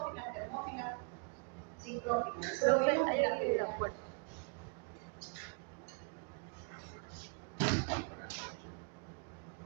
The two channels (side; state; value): left; quieter; 38.2 dB